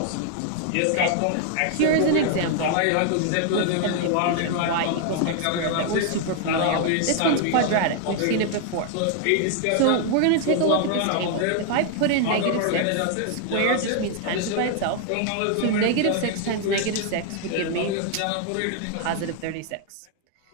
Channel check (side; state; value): both; different; correlation 0.00